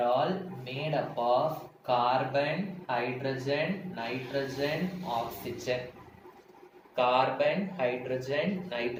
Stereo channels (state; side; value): identical; both; correlation 1.00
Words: of carbon, hydrogen, nitrogen, oxygen. Carbon, hydrogen,